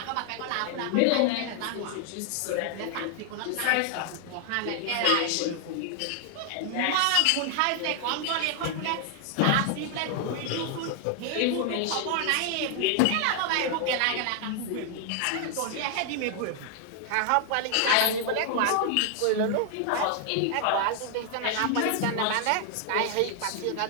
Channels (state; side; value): different; both; correlation 0.00